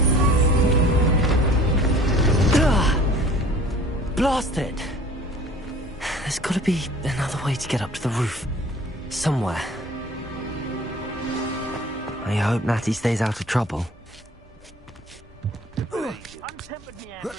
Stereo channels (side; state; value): both; normal; correlation 0.48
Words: Blast it! There's gotta be another way to get up to the roof. Somewhere. I hope Natty stays out of trouble. Untempered meander